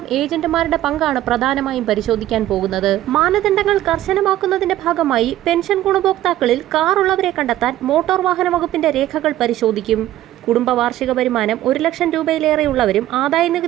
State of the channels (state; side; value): quieter; left; 14.0 dB